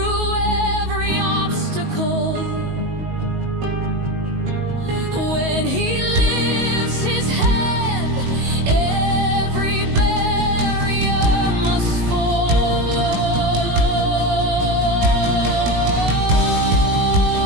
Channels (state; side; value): late; left; 19 ms